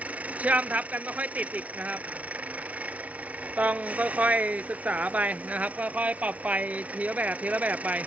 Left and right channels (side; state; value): left; late; 0.067 ms